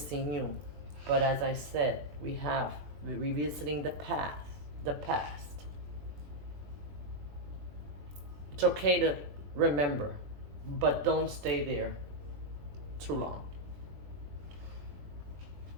you. But as I said, we're revisiting the past. It's okay to remember, but don't stay there too long.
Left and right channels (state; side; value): late; left; 20 ms